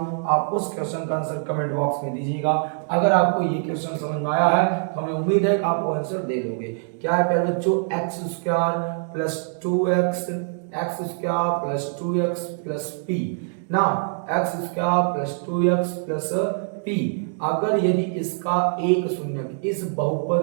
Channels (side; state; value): left; silent; digital silence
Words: आप उस क्वेश्चन का आंसर कमेंट बॉक्स में दीजिएगा। अगर आपको ये क्वेश्चन समझ में आया है तो हमें उम्मीद है कि आप वो आंसर दे दोगे। क्या है प्यारे बच्चों, x square plus 2x, x square plus 2x plus p ना, x square plus 2x plus p। अगर यदि इसका एक शून्यक, इस बहुपद